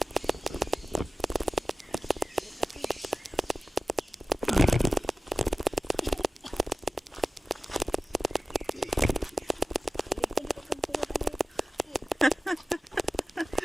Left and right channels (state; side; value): normal; both; correlation 0.95